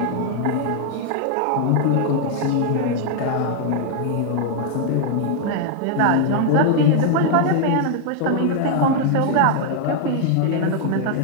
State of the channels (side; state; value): both; different; correlation 0.00